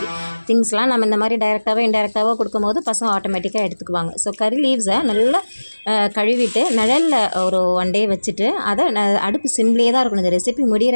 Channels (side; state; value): both; inverted; correlation -1.00